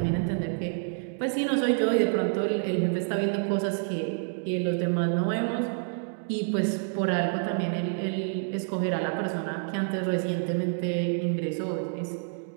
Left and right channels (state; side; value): silent; left; digital silence